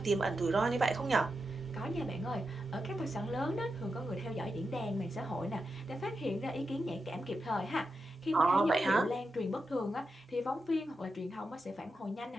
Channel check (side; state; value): both; normal; correlation 0.88